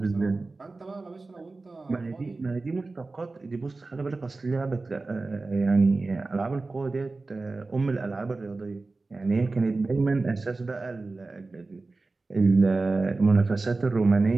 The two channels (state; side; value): quieter; left; 3.5 dB